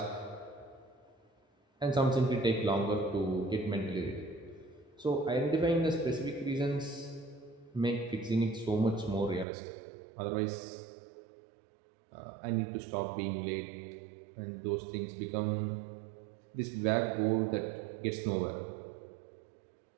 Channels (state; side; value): drops out; left; at 9.5 s